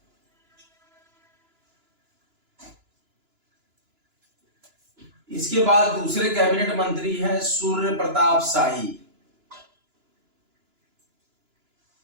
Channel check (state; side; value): late; left; 2.9 ms